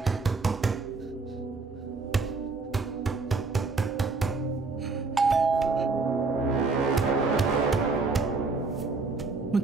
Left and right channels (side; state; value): left; quieter; 4.1 dB